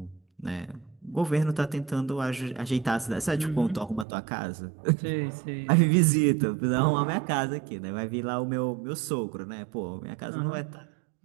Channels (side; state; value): left; drops out; at 4.0 s